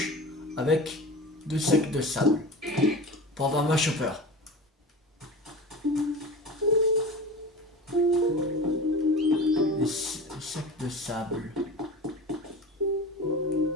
avec 2 sacs de sable pour avoir ma chopper. Les sacs de sable.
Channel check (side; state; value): both; normal; correlation 0.33